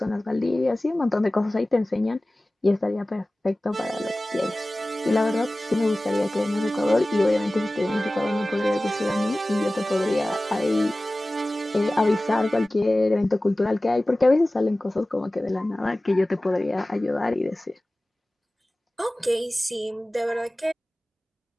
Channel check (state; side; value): normal; both; correlation 0.97